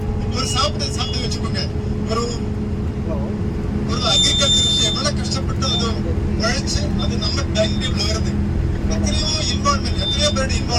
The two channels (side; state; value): both; identical; correlation 1.00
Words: ஒரு சாப்பிட்டு வச்சுக்கோங்க, ஒரு அக்ரிகல்ச்சர் எவ்வளவு கஷ்டப்பட்டு அது உழைச்சு அது நம்ம டைம் டேபிள் வருது. எத்தனையோ இன்வால்மெண்ட், எத்தனையோ பேரோட